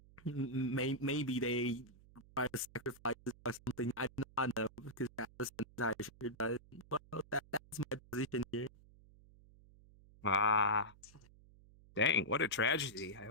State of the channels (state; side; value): noise; right; hum, 24 dB below the sound